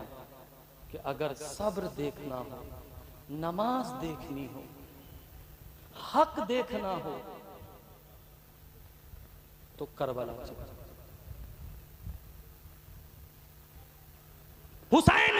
कि अगर सब्र देखना हो, नमाज देखनी हो, हक देखना हो तो करबला चले। हुसैन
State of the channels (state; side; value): identical; both; correlation 1.00